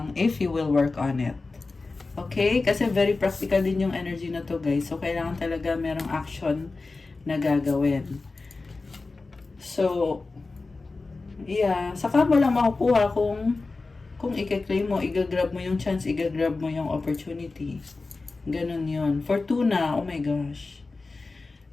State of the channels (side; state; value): right; quieter; 3.7 dB